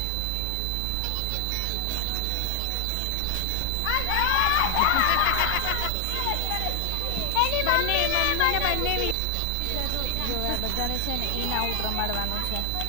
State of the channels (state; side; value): different; both; correlation 0.00